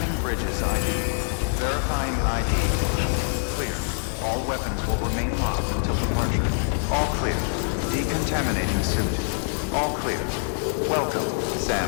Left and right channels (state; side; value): silent; right; 62 dB below the other